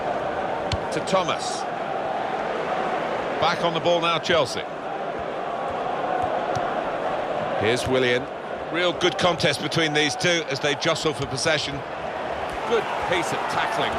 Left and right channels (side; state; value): both; identical; correlation 1.00